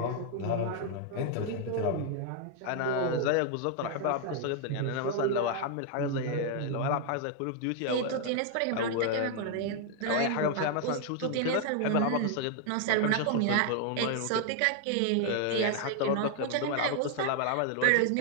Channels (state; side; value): different; both; correlation 0.00